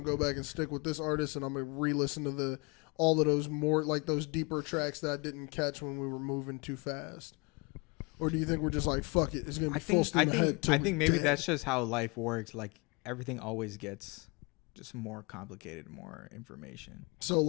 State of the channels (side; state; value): right; quieter; 29.5 dB